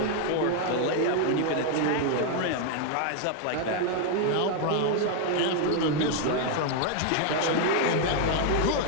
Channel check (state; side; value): different; both; correlation 0.00